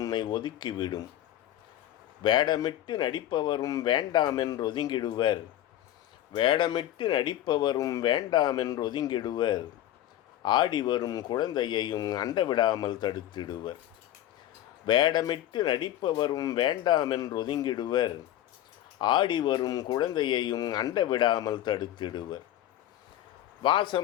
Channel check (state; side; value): quieter; right; 12.8 dB